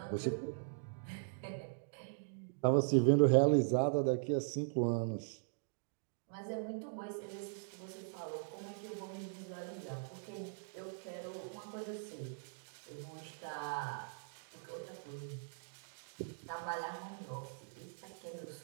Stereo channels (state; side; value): silent; left; digital silence